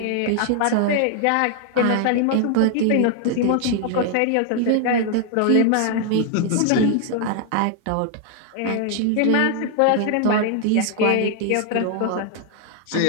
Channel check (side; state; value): both; different; correlation 0.00